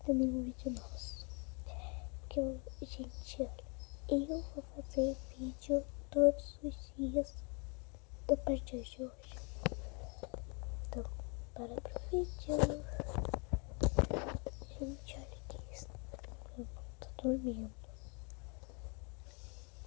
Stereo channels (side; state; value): right; quieter; 34.1 dB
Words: nenhum vídeo nosso. Porque, gente, olha, eu vou fazer vídeo todos os dias a partir de hoje. Então, bora pro vídeo. Gente, olha que isso. Eu não tô dormindo.